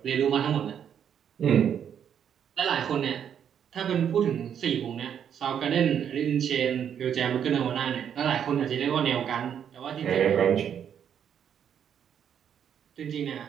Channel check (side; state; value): left; quieter; 8.6 dB